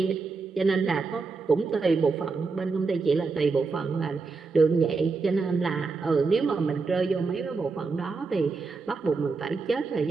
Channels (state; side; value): quieter; left; 4.4 dB